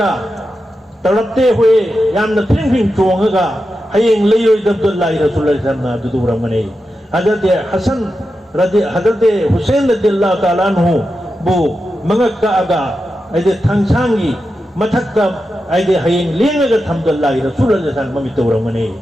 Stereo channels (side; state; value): both; normal; correlation 0.89